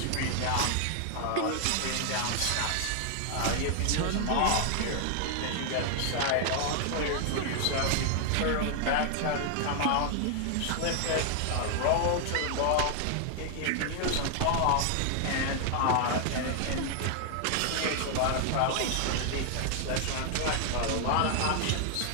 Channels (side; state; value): both; different; correlation 0.00